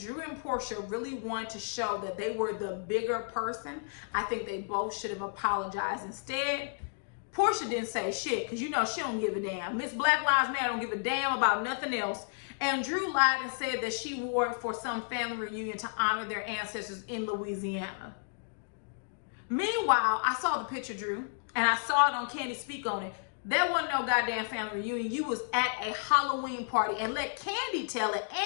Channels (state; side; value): silent; right; digital silence